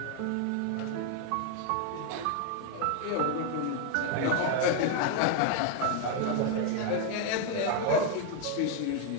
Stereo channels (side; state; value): both; different; correlation 0.00